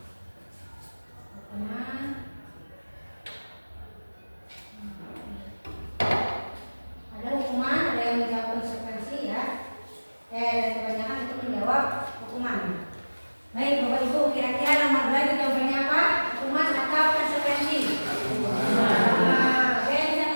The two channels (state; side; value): inverted; both; correlation -1.00